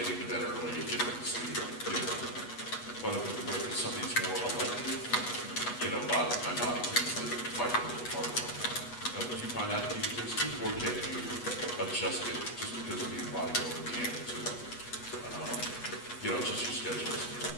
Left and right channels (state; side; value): late; right; 8.2 ms